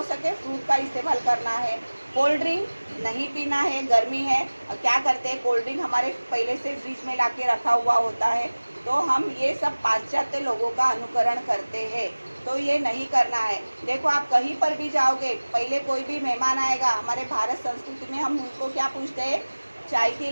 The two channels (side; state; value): both; inverted; correlation -1.00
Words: सके फ्रूट का इस्तेमाल करना है। कोल्ड ड्रिंक नहीं पीना है, गर्मी है। क्या करते हैं, कोल्ड ड्रिंक हमारे पहले से फ्रिज में ला के रखा हुआ होता है तो हम ये सब पाश्चात्य लोगों का अनुकरण करते हैं, तो ये नहीं करना है। देखो आप कहीं पर भी जाओगे, पहले कोई भी मेहमान आएगा, हमारे भारत संस्कृति में हम उनको क्या पूछते हैं, चाय के